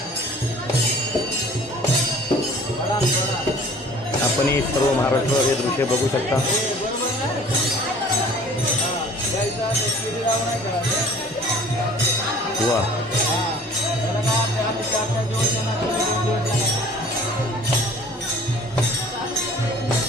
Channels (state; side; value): normal; both; correlation 0.49